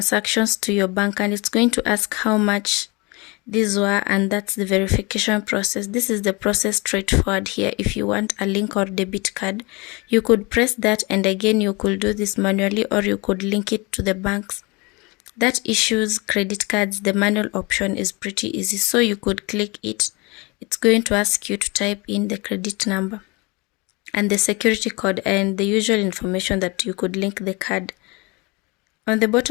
to your bank, and it's going to ask how much these were, and that's the verification process. This is the process straightforward here. If you want a link or debit card, you could press that, and again you could do this manually, or you could link it to the banks that issues credit cards. The manual option is pretty easy, so you could click it. It's going to ask you to type in the credit number and the security code and the usual information that you could link the card. On the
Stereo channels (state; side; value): quieter; right; 26.6 dB